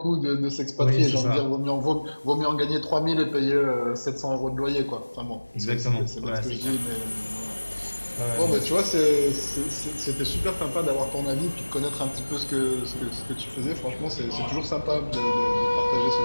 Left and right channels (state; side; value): inverted; both; correlation -1.00